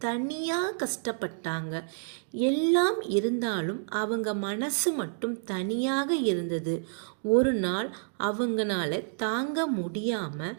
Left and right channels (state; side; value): silent; left; digital silence